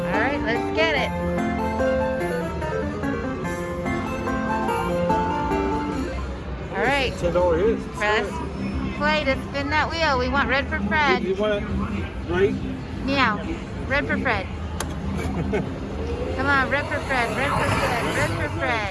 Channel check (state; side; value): identical; both; correlation 1.00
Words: All right, let's get it. All right. $10 hit. Press play to spin that wheel. We want red for Fred. You want it right? Meow. Red for Fred. Come on, red for Fred. Red for Fred. Red for